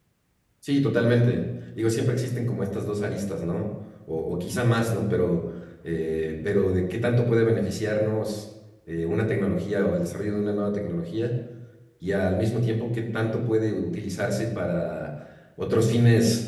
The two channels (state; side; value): identical; both; correlation 1.00